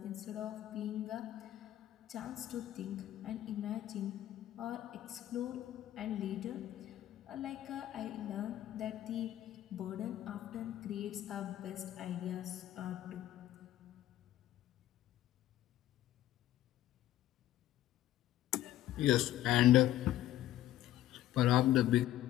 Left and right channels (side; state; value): right; quieter; 13.4 dB